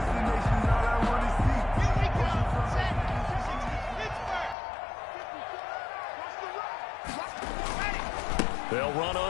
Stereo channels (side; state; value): right; drops out; at 4.5 s